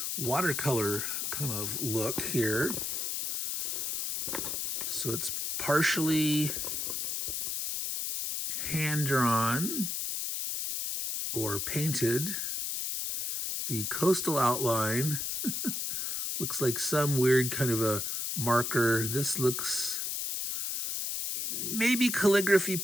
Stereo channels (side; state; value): left; noise; hiss, 2 dB below the sound